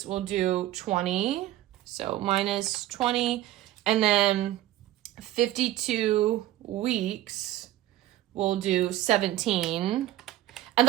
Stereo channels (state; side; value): quieter; left; 14.6 dB